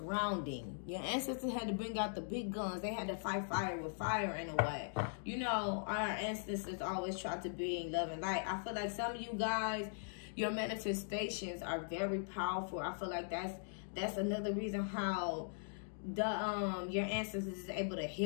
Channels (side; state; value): right; silent; digital silence